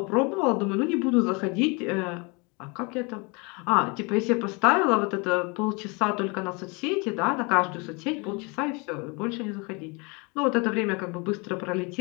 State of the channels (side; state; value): right; quieter; 29.9 dB